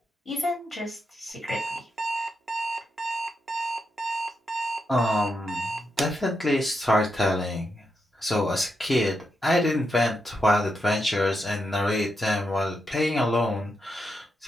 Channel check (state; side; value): normal; both; correlation 0.84